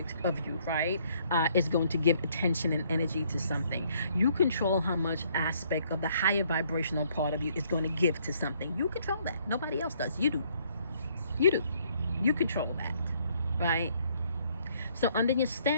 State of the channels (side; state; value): both; inverted; correlation -0.66